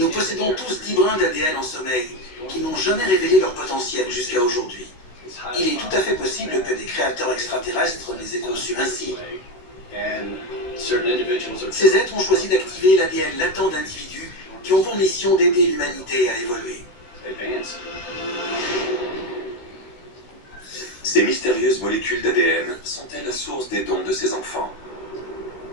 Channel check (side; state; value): right; late; 16 ms